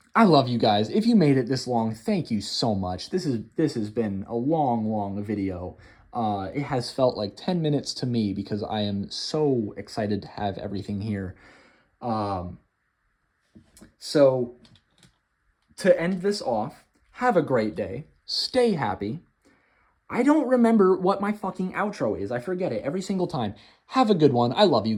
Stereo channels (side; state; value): both; identical; correlation 1.00